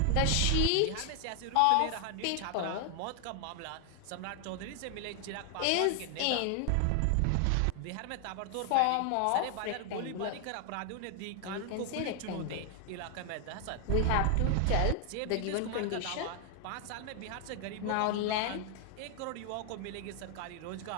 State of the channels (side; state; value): both; different; correlation 0.00